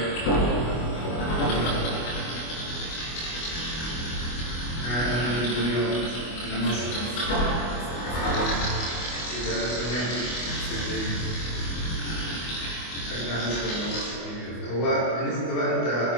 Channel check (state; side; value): late; right; 25 ms